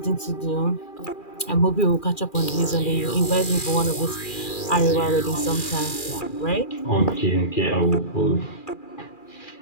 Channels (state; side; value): late; right; 2.4 ms